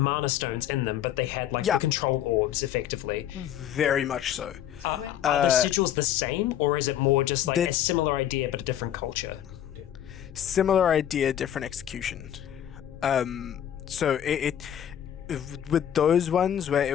stones in them, but they had the control orbs effectively. Very much so. Are the sigils the same, or is it more just a similar idea but a different culture? Similar idea, different execution. So it with those ones where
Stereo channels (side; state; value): right; quieter; 10.7 dB